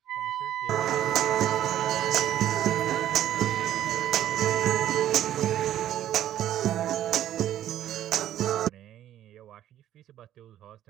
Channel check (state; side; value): quieter; left; 11.9 dB